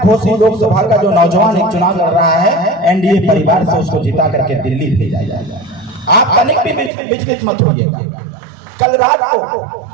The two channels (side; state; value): left; drops out; at 6.9 s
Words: घोषी लोकसभा का जो नौजवान एक चुनाव लड़ रहा है एनडीए परिवार से, उसको जिता करके दिल्ली भेजा जाए। आप तनिक भी विचलित मत होइएगा। कल रात को